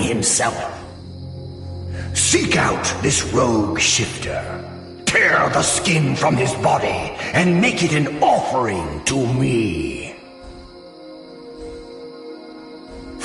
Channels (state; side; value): identical; both; correlation 1.00